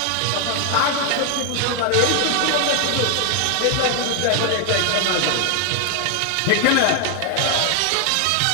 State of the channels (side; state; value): both; different; correlation 0.00